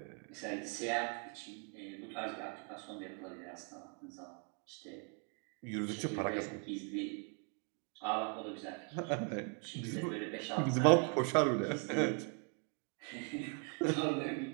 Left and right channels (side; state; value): left; quieter; 38.5 dB